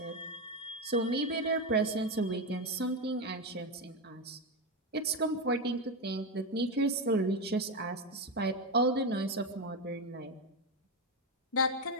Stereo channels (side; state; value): both; normal; correlation 0.11